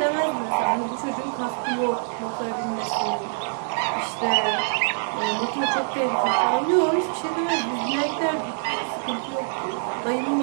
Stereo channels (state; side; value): silent; left; digital silence